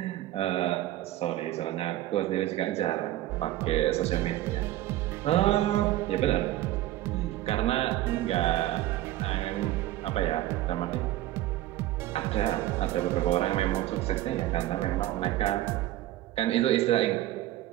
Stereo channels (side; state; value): left; quieter; 14.9 dB